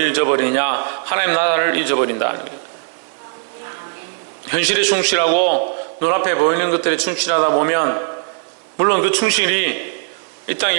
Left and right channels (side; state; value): left; silent; 62 dB below the other